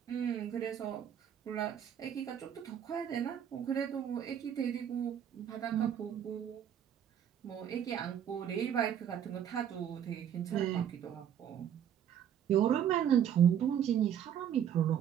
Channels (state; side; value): quieter; left; 9.3 dB